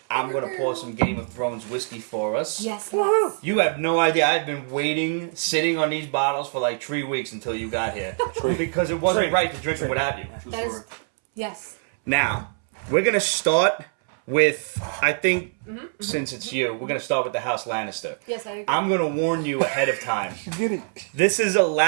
I'm going to pour some Game of Thrones whiskey for us. Yes. You have no idea. I've been waiting, sitting on these bottles for like 3 weeks until you got here. Because it wasn't right to drink them without you. That is, yes. Now, we're going to start with, I think, since it's you, we're going to start with the House Lannister. Yes, I agree. I'm going to warn you ahead of time. Get it. This is a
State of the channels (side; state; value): left; silent; 62 dB below the other